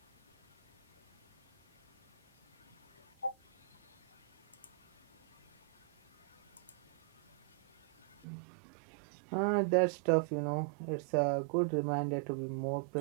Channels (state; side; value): drops out; left; at 8.2 s